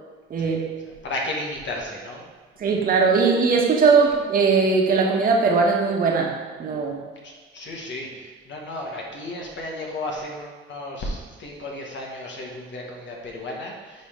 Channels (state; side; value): quieter; left; 3.9 dB